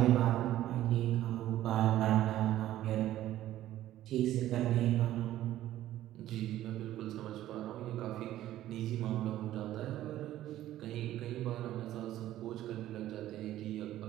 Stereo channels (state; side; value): quieter; left; 13.7 dB